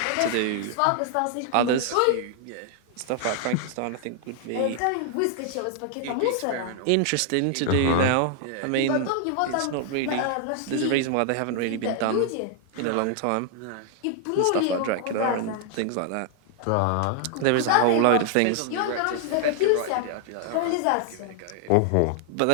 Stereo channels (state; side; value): different; both; correlation 0.00